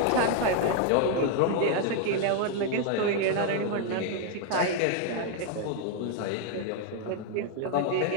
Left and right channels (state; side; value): different; both; correlation 0.01